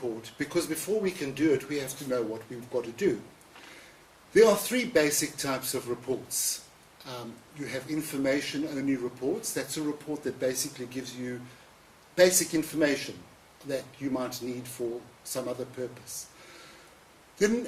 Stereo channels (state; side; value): identical; both; correlation 1.00